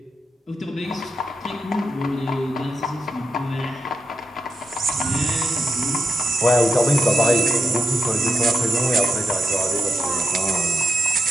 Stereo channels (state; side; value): normal; both; correlation 0.86